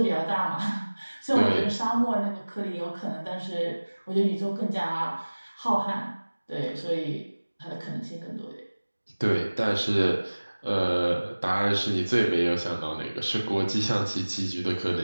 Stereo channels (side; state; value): both; inverted; correlation -1.00